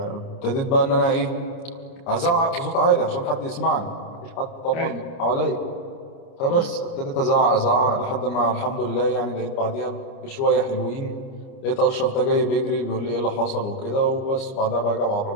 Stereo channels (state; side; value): late; right; 29 ms